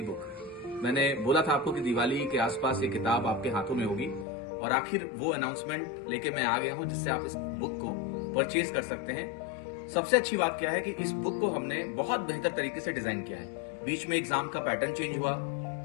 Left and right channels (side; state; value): right; drops out; at 4.2 s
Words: बुक। मैंने बोला था आपको कि दिवाली के आसपास ये किताब आपके हाथों में होगी और आखिर वो अनाउंसमेंट लेके मैं आ गया हूं जिससे आप इस बुक को परचेज कर सकते हैं। सबसे अच्छी बात क्या है कि इस बुक को हमने बहुत बेहतर तरीके से डिजाइन किया है। बीच में एग्जाम का पैटर्न चेंज हुआ